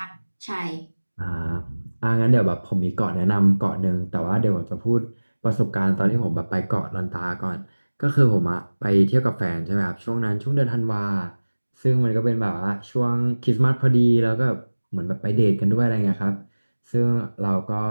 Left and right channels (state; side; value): inverted; both; correlation -1.00